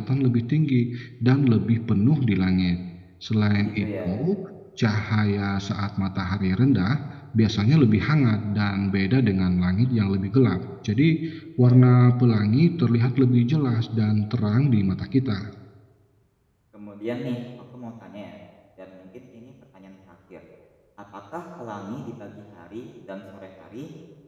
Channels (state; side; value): identical; both; correlation 1.00